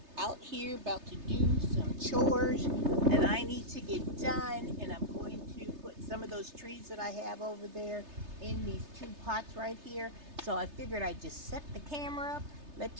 out here about to do some chores that I need to get done. And I'm going to put some of those trees that I have over there in these two pots right here. So I figured I'd just set the camera up, let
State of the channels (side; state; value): left; late; 3.3 ms